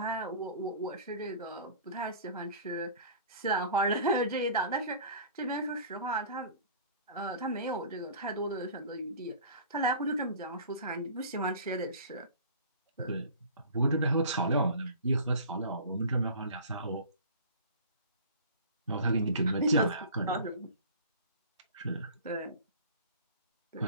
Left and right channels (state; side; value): inverted; both; correlation -0.42